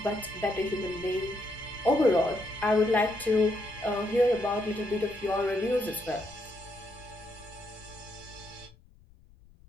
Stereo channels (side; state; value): left; noise; rumble, 26 dB below the sound